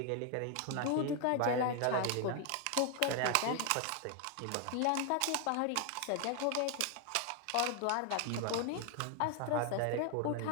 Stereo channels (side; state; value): both; different; correlation 0.00